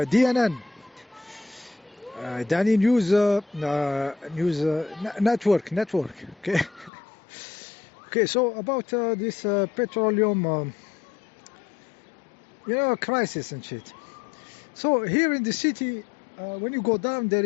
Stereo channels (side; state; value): right; drops out; at 6.9 s